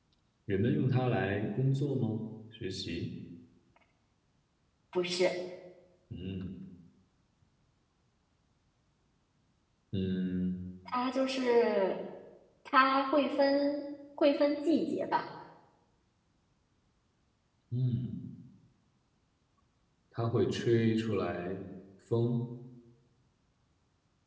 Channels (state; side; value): identical; both; correlation 1.00